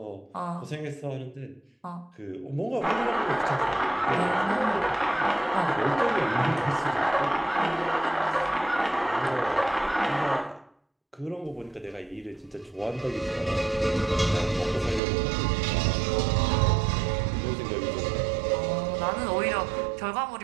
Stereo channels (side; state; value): left; drops out; at 15.0 s